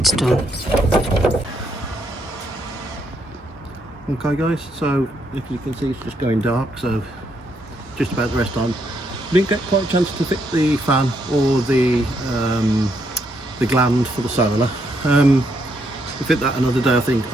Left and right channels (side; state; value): both; normal; correlation 0.75